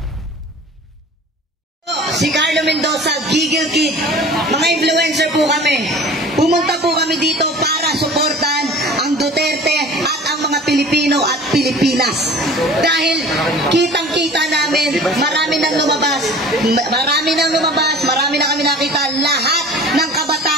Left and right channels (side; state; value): both; normal; correlation 0.43